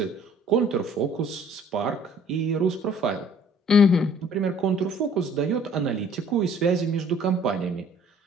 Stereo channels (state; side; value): normal; both; correlation 0.55